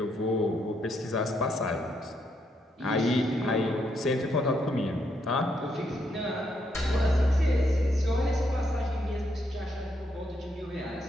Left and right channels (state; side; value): normal; both; correlation 0.77